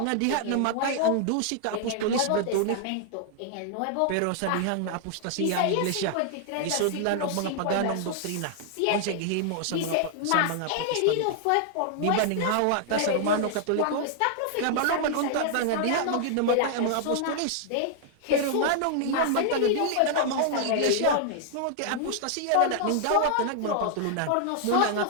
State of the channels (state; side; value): different; both; correlation 0.00